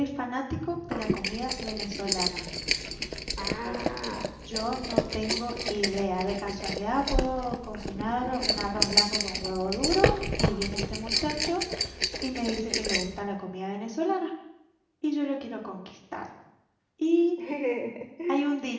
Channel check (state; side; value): identical; both; correlation 1.00